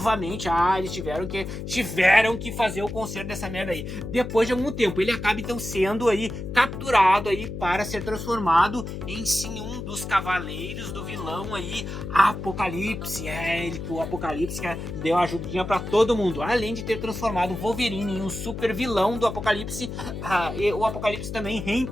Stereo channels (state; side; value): noise; left; hum, 7 dB below the sound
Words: Eles tiveram que fazer o conserto dessa merda aí. Depois de algum tempo, ele acaba então sendo aí capturado aí para ser transformado em sim um dos cavaleiros do vilão aí, Apocalipse. O Apocalipse que deu ajudinha para todo mundo, além de ter transformado o Wolverine em um super vilão do Apocalipse. O Apocalipse também